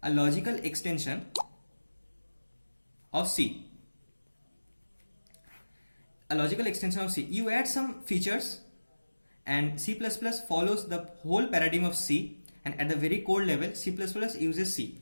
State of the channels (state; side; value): inverted; both; correlation -1.00